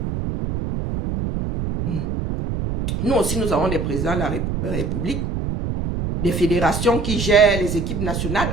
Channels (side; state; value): right; noise; rumble, 3 dB below the sound